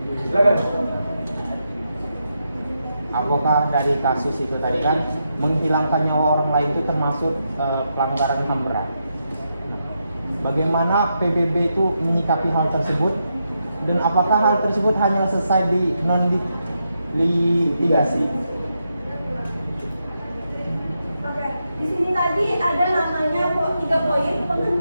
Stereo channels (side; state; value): both; inverted; correlation -0.83